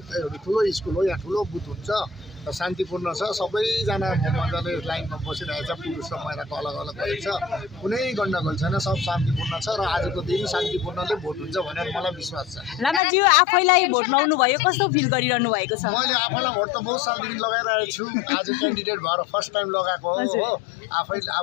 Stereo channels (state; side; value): drops out; right; at 13.0 s